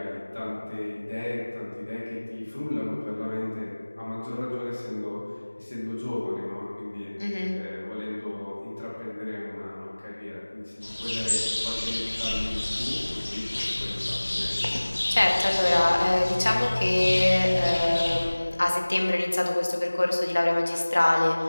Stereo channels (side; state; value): both; inverted; correlation -1.00